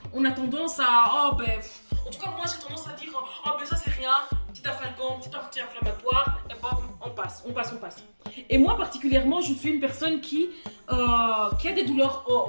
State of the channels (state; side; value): inverted; both; correlation -1.00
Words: On a tendance à en tout cas moi j'ai tendance à dire ça c'est rien, petit afalgan, petit anti-inflammatoire et on passe. Et moi particulièrement je suis une personne qui a des douleurs